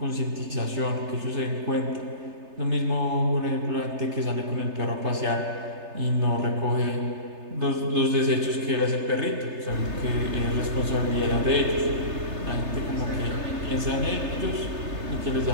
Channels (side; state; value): left; late; 3.3 ms